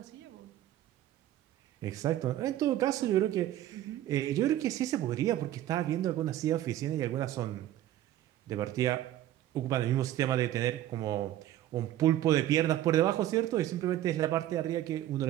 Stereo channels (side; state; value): left; quieter; 13.2 dB